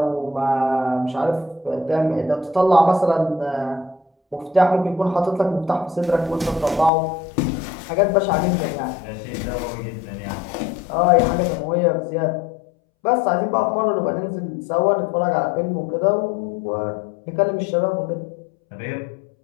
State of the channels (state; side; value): drops out; right; at 6.9 s